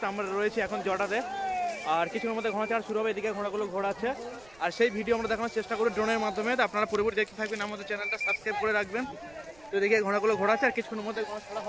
আমরা রয়েছি এখন জটাতে। আর কিছুর মধ্যে ঘোড়া ছাড়া শুরু হবে, এদিকে ঘোড়াগুলো ঘোরাচ্ছে আর সেই ভিডিও আমরা দেখানোর চেষ্টা করি ড্রোনের মাধ্যমে। আপনারা পুরোপুরি দেখতে থাকবেন, আমাদের চ্যানেলটা সাবস্ক্রাইব করে রাখবেন। তো এদিকে ঘোড়াগুলো ঘোরাচ্ছে আর কিছুক্ষণের মধ্যে ঘোড়া ছাড়া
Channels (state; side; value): noise; right; rumble, 26 dB below the sound